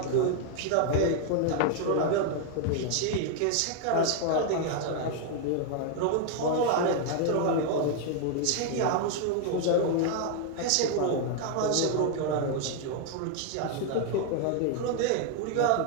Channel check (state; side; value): different; both; correlation 0.00